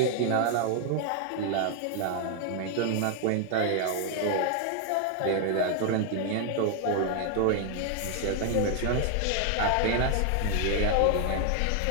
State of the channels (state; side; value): different; both; correlation 0.00